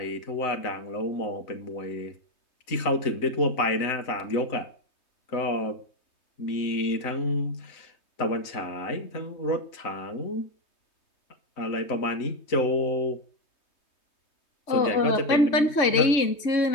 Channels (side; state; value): right; late; 3.2 ms